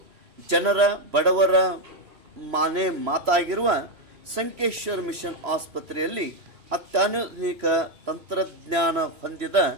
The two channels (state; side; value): late; left; 3.0 ms